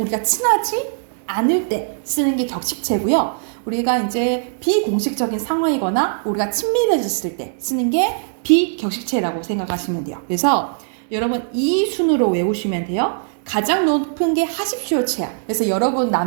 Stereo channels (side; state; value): left; silent; digital silence